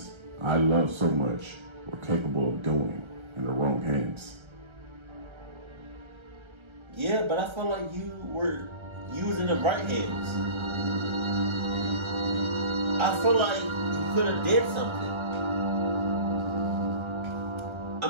I love so much were capable of doing in the wrong hands. Yeah, but I feel like you were using the right hands. I feel like you could have did something.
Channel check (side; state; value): left; late; 1.3 ms